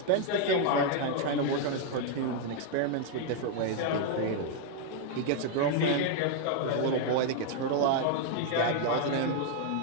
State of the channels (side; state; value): both; different; correlation 0.00